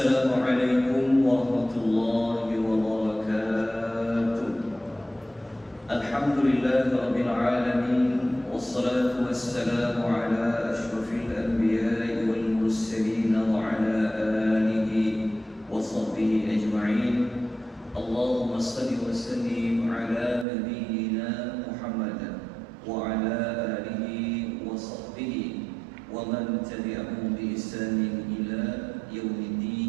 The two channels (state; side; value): drops out; left; at 20.5 s